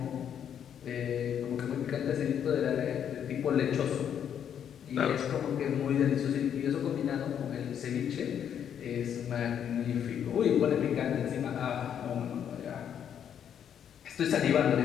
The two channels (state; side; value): quieter; right; 8.9 dB